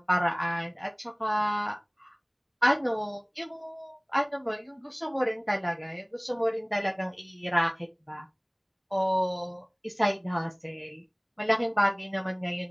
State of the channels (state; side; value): identical; both; correlation 1.00